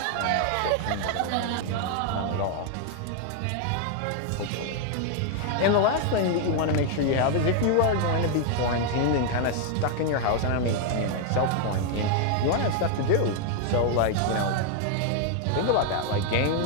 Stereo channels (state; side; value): different; both; correlation 0.00